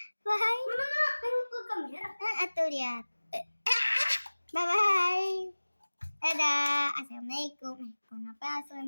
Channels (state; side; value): inverted; both; correlation -1.00